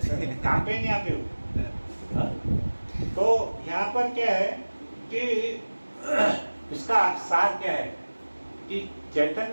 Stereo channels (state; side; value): inverted; both; correlation -1.00